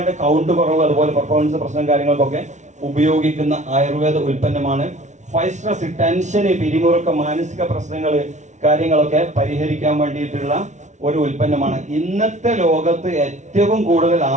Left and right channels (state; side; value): late; left; 0.34 ms